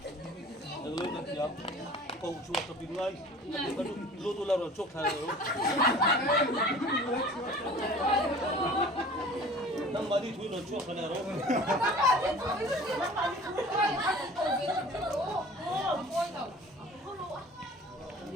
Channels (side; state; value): both; normal; correlation 0.44